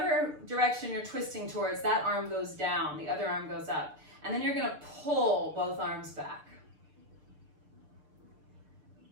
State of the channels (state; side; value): late; left; 6.7 ms